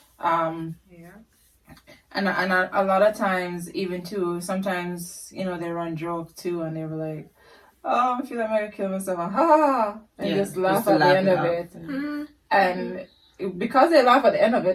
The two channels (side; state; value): both; identical; correlation 1.00